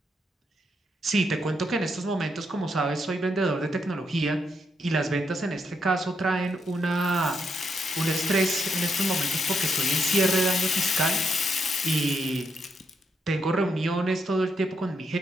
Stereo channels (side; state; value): both; normal; correlation 0.78